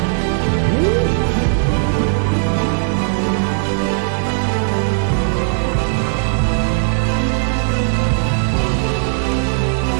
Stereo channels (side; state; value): left; silent; digital silence